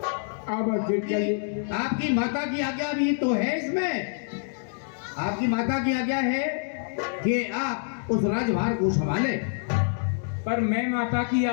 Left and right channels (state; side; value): silent; right; digital silence